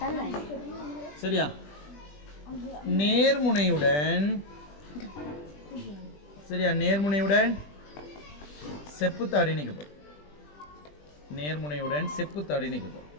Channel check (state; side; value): late; right; 20 ms